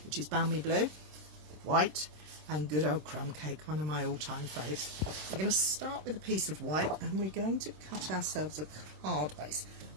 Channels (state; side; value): late; left; 26 ms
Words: which is balmy blue, white, and good old crumb cake, one of my all-time faves. We're going to start with a piece of white, and we're going to cut ourselves a card base.